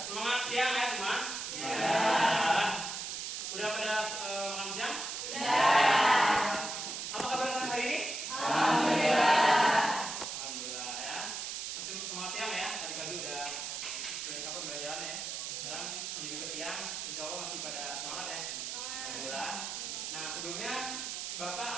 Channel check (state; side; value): noise; right; hiss, 5 dB below the sound